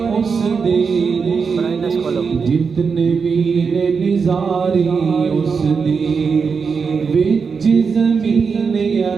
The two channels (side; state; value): left; quieter; 5.5 dB